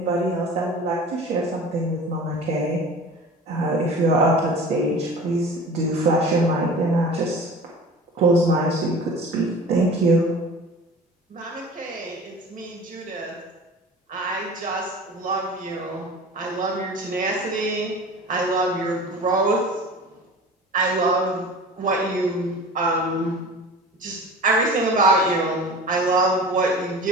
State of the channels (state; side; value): normal; both; correlation 0.38